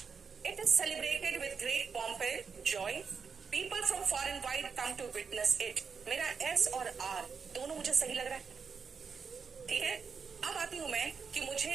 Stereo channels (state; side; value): quieter; left; 5.8 dB